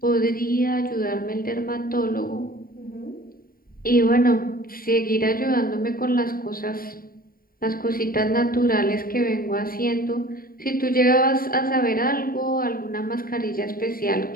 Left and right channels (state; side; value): late; right; 0.43 ms